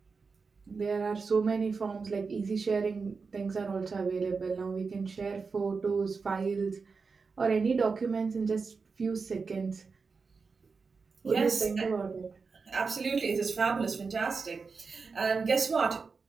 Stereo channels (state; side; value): quieter; left; 4.8 dB